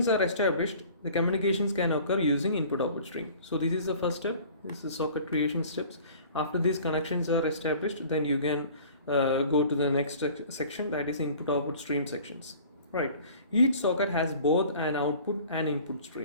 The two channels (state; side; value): inverted; both; correlation -0.47